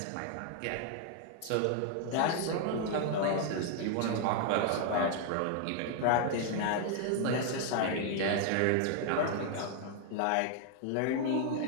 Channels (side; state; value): both; different; correlation 0.00